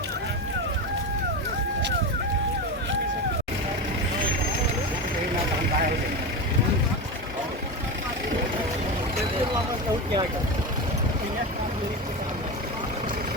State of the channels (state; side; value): normal; both; correlation 0.20